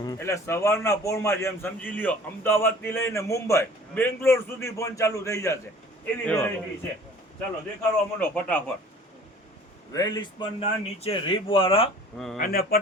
એટલે સવારના પોરમાં જેમ સમજી લ્યો અમદાવાદ થી લઈને મુંબઈ બેંગ્લોર સુધી ફોન ચાલુ થઈ જશે એવી એવા વેરાયટી છે ચાલો દેખાડવા માંડો ફટાફટ વેલિસ્પન ના નીચે રીબ વાળા હમ. અને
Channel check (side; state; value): both; normal; correlation 0.48